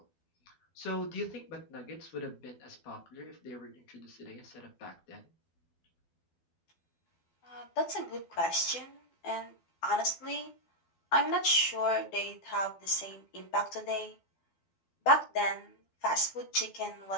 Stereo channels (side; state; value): right; late; 12 ms